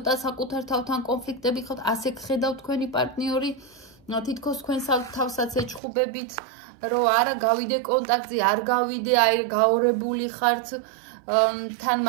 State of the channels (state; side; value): drops out; left; at 5.8 s